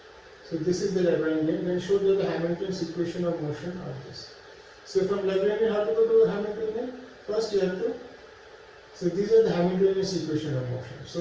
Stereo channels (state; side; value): identical; both; correlation 1.00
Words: So this is the Lagrangian. Then show that the Hamilton's equation of motion are this. So from Lagrangian, how to go to Hamiltonian? First you have to. So these are the Hamiltonian equation of motion.